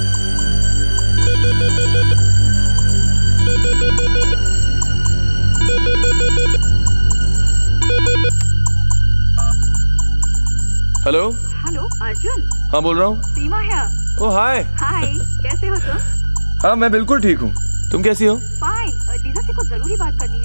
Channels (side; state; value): both; inverted; correlation -1.00